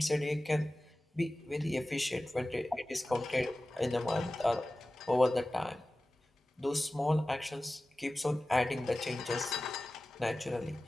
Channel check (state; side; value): normal; both; correlation 0.96